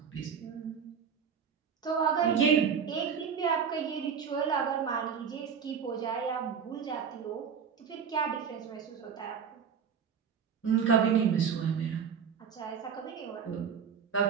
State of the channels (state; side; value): quieter; left; 6.9 dB